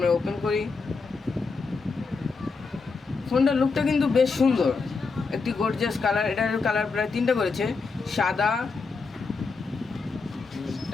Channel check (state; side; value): quieter; right; 4.5 dB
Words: ওপেন করি। ফোনটার লুকটা কিন্তু বেশ সুন্দর, একটি গর্জিয়াস কালার। এটার কালার প্রায় তিনটা করেছে: সাদা,